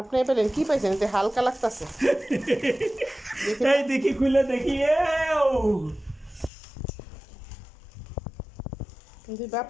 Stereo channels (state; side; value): drops out; right; at 6.5 s